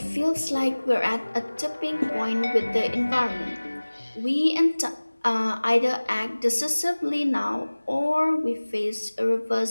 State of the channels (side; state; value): both; inverted; correlation -1.00